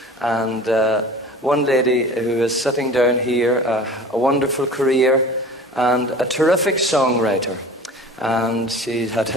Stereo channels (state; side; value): normal; both; correlation 0.41